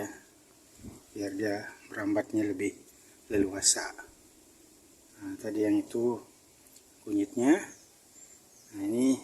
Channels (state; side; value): identical; both; correlation 1.00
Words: biar dia merambatnya lebih leluasa. Nah, tadi yang itu kunyitnya. Nah, ini